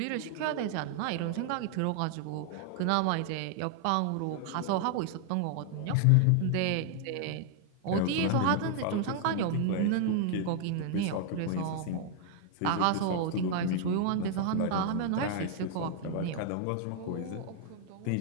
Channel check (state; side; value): different; both; correlation 0.00